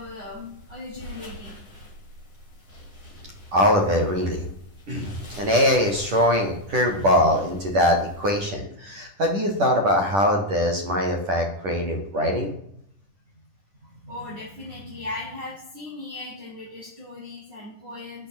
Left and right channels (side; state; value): left; late; 10 ms